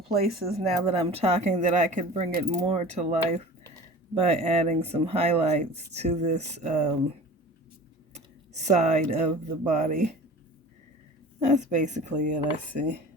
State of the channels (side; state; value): both; normal; correlation 0.40